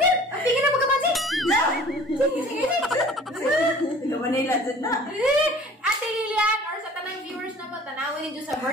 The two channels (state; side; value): normal; both; correlation 0.48